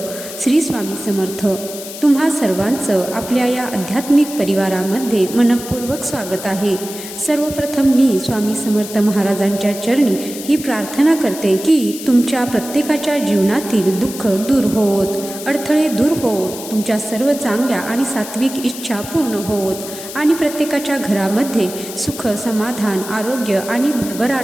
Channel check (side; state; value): left; noise; hiss, 11 dB below the sound